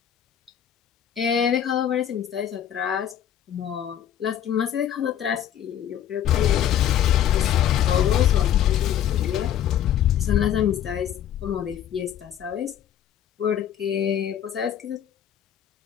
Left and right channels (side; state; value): right; quieter; 10.2 dB